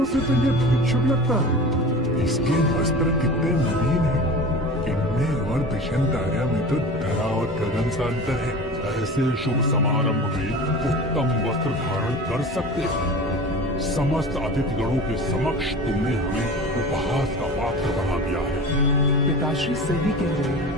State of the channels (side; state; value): both; normal; correlation 0.35